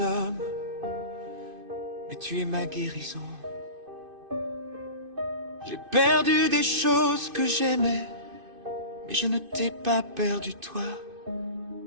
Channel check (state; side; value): late; left; 2.5 ms